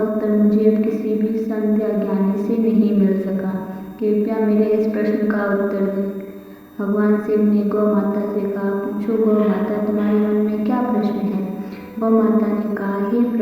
मुझे अब किसी भी संत या ज्ञानी से नहीं मिल सका। कृपया मेरे इस प्रश्न का उत्तर दें। भगवान शिव ने गौ माता से कहा, पूछो गौ माता, तुम्हारे मन में क्या प्रश्न है। गौ माता ने कहा, हे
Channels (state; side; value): identical; both; correlation 1.00